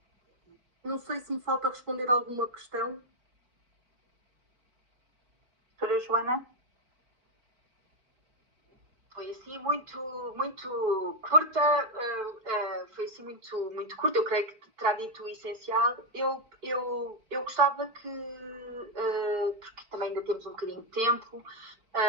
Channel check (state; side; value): late; left; 4.5 ms